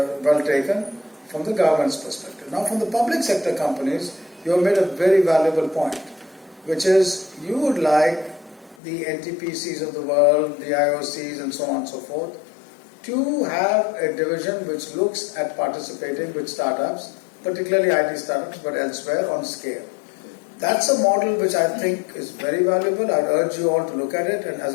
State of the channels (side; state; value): right; drops out; at 8.8 s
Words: well taken from the government's perspective. Now from the public sector companies, you have made a very valuable point, which is you would like the NTPCs of the world, the IOCs and so on and so forth, to have a division which looks at participating with startups, particularly IT startups, but elsewhere on scale. That's a model which I think is very valuable. I'd urge you all to look at it, and as